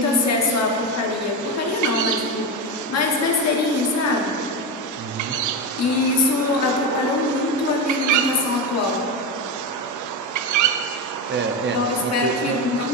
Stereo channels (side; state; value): both; normal; correlation 0.15